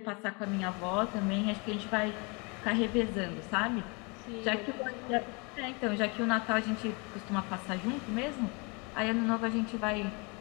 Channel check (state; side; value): quieter; right; 30.8 dB